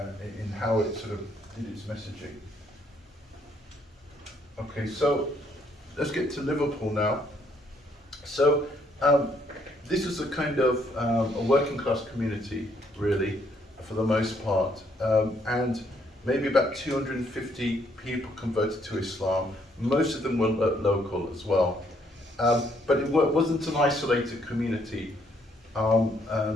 in how it sort of did its messaging. Okay, so let's get to Liverpool now. So this was a kind of a working class community, really, for the most part, and maybe about 250 people converted to Islam. Most of them were local as well, but it wasn't an isolated community.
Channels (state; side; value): normal; both; correlation 0.69